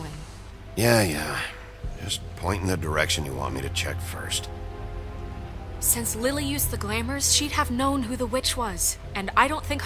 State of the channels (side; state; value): both; identical; correlation 1.00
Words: Yeah. Just point in the direction you want me to check first. Since Lily used the glamours, she'd have known who the witch was, and I don't think